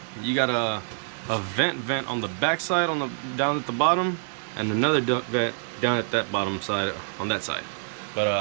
you got a vent on the back side, down at the bottom, and another duct vent down at that bottom side on that side.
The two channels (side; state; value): left; silent; 61 dB below the other